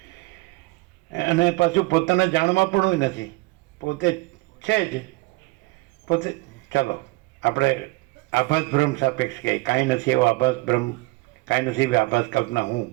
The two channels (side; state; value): left; quieter; 23.9 dB